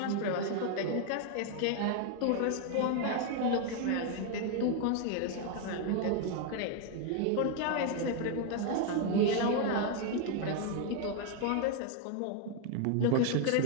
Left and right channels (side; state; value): both; different; correlation 0.00